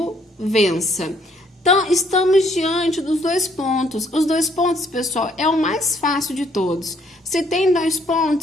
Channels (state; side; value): normal; both; correlation 0.66